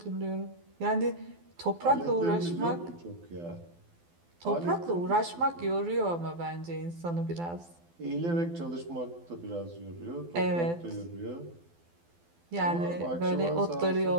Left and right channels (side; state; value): left; late; 12 ms